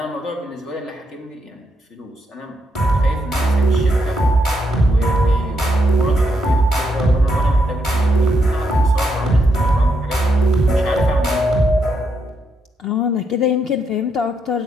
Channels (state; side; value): normal; both; correlation 0.79